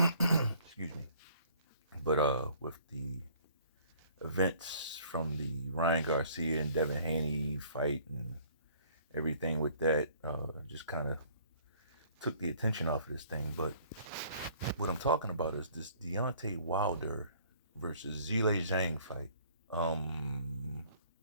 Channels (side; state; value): both; inverted; correlation -0.57